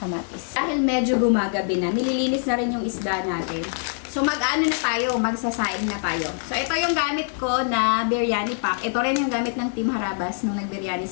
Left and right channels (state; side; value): silent; right; 63 dB below the other